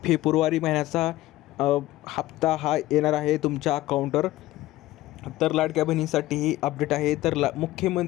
फेब्रुवारी महिन्याचा हप्ता हा येणार आहे तुमच्या अकाउंटवर. तर लाडक्या बहिणीसाठी ही अपडेट आहे. तर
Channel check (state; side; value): quieter; right; 16.6 dB